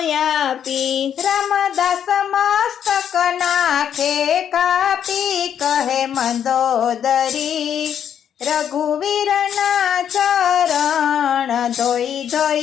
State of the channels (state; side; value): quieter; right; 9.0 dB